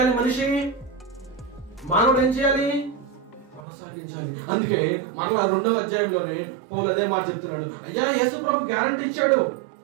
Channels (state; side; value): drops out; left; at 3.6 s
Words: మనిషి, మానవుడు ఏం చేయాలి? కొనసాగించాలి. అందుకే మరలా 2వ అధ్యాయంలోనే పౌలు అదే మాట చెప్తున్నాడు. అయ్యా యేసుప్రభు గ్యారంటీ ఇచ్చాడు.